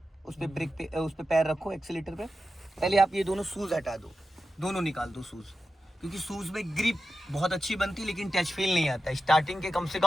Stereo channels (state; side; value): normal; both; correlation 0.92